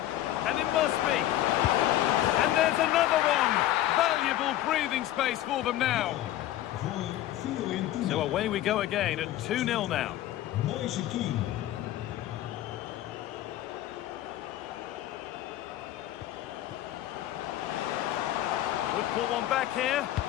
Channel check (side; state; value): right; quieter; 13.7 dB